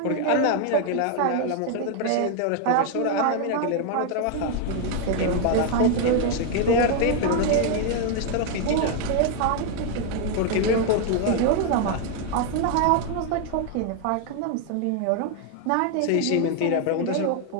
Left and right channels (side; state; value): both; different; correlation 0.00